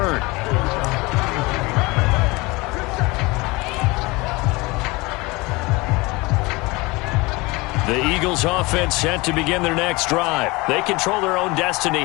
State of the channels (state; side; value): quieter; right; 23.9 dB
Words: The Eagles offense set to begin their next drive. They control their own destiny